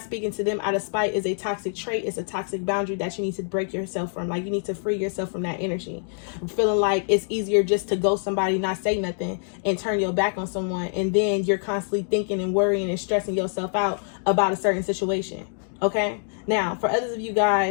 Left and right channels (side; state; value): right; silent; digital silence